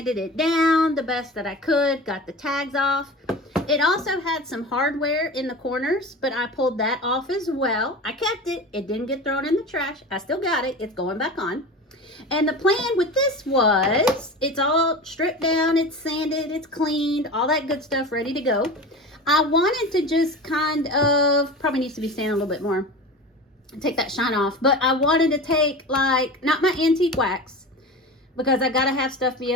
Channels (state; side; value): normal; both; correlation 0.32